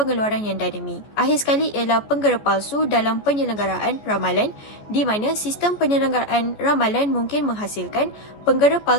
yang dinamik. Akhir sekali ialah penggera palsu dalam penyelenggaraan ramalan di mana sistem penyelenggaraan ramalan mungkin menghasilkan penggera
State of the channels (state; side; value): late; right; 14 ms